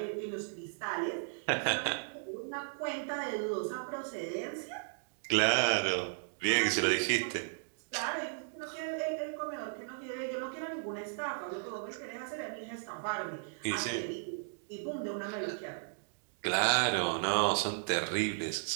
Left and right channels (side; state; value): left; silent; digital silence